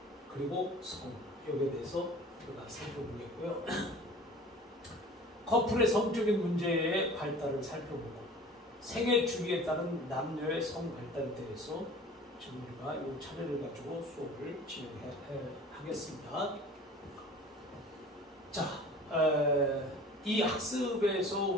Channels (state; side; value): normal; both; correlation 0.44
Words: 그리고 성, 여기에 대해서 우리가 살펴보겠고요. 커플의 성적인 문제의 발달을 살펴보고, 생애 주기에 따른 남녀의 성 발달에 대해서 지금 우리가 이 차례를 가지고 수업을 진행하겠습니다. 자, 이 학습에서